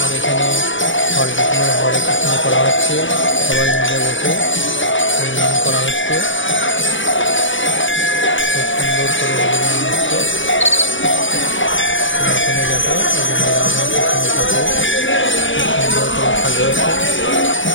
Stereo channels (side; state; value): right; late; 0.56 ms